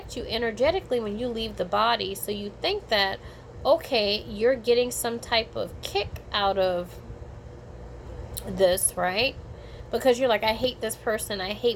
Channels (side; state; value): both; identical; correlation 1.00